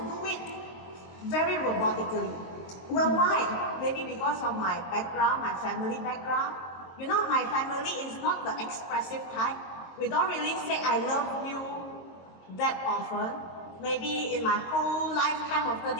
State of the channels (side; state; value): right; late; 22 ms